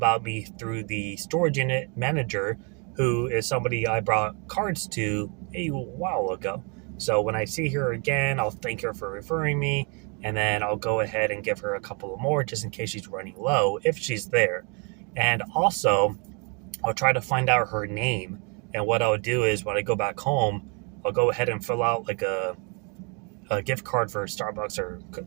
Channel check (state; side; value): quieter; left; 34.9 dB